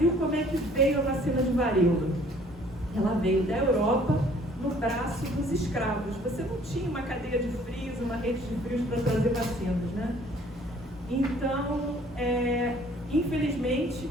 como é que veio a vacina de varíola? Ela veio da Europa, no braço dos escravos. Você não tinha uma cadeia de frios, uma rede de frios para trazer vacinas, né? Então, infelizmente,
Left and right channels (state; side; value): normal; both; correlation 0.57